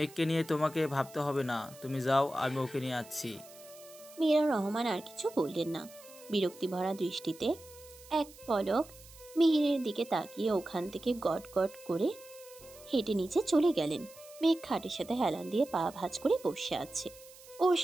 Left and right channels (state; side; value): noise; right; hiss, 21 dB below the sound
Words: নিয়ে তোমাকে ভাবতে হবে না, তুমি যাও, আমি ওকে নিয়ে আসছি। মীরা রহমান আর কিছু বললেন না। বিরক্তি ভরা দৃষ্টিতে এক পলক মিহিরের দিকে তাকিয়ে ওখান থেকে গট গট করে হেঁটে নিচে চলে গেলেন। মেঘ খাটের সাথে হেলান দিয়ে পা ভাঁজ করে বসে আছে। ওর